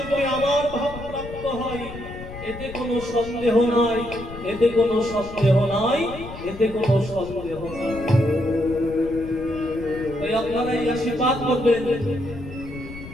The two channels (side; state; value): left; noise; rumble, 13 dB below the sound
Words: আমার ভাব প্রাপ্ত হয়, এতে কোনো সন্দেহ নাই, এতে কোনো সন্দেহ নাই, এতে কোনো সন্দেহ নাই। তাই আপনারা এই আশীর্বাদ করবেন,